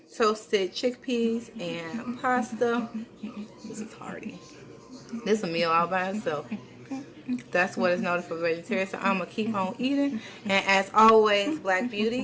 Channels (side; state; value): both; identical; correlation 1.00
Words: toasted chickpeas and pasta. This is hearty. This is a meal all by itself. That's what is noted for vegetarians. So I'm going to keep on eating. And as always, black